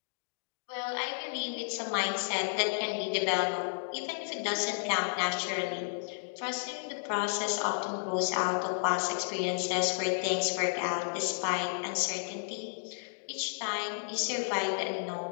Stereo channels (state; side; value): silent; right; digital silence